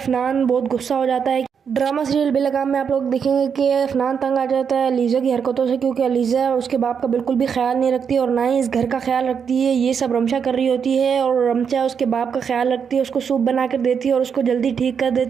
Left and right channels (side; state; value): left; quieter; 6.9 dB